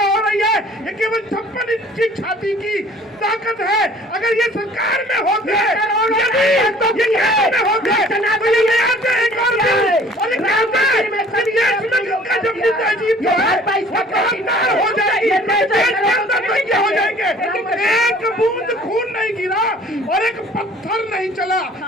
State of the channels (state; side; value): normal; both; correlation 0.52